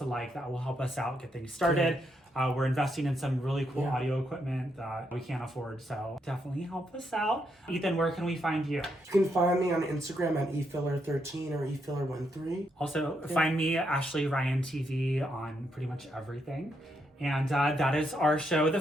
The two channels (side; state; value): both; normal; correlation 0.79